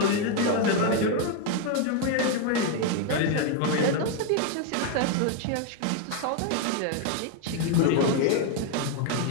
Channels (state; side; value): different; both; correlation 0.01